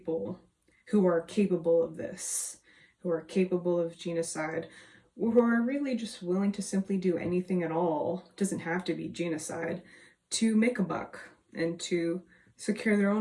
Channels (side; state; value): both; identical; correlation 1.00